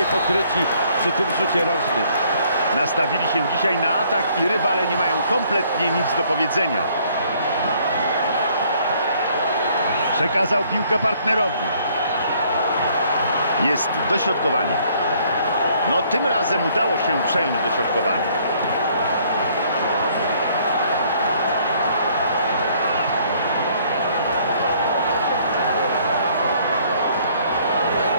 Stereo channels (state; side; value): inverted; both; correlation -0.63